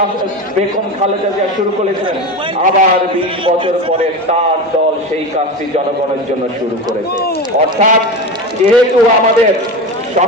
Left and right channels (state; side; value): normal; both; correlation 0.24